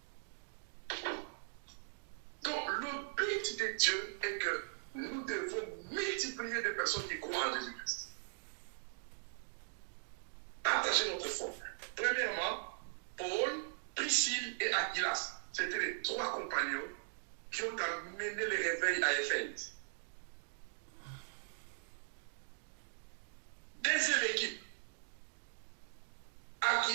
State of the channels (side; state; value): left; silent; digital silence